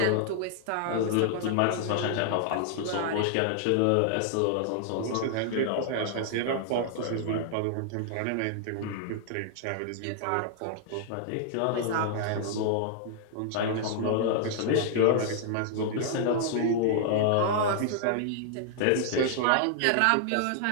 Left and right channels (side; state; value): both; different; correlation -0.01